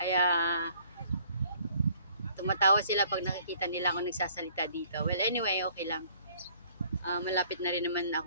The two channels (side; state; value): both; inverted; correlation -0.59